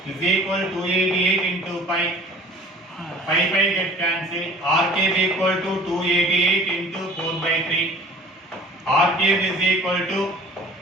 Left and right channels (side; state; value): both; normal; correlation 0.46